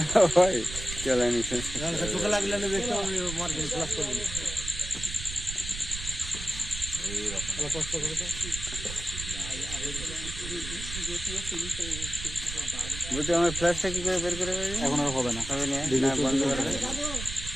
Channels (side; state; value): right; noise; rumble, 8 dB below the sound